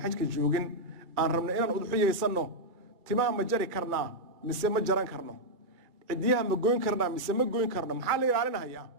xajka joogin aan rabno inaan udxiyeysanno timaa ma jari karnaa mise ma jaran karno cidiyaha ma goyn karnaa mise ma goyn karno maxaa la ilaalinayaa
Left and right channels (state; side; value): late; left; 2.3 ms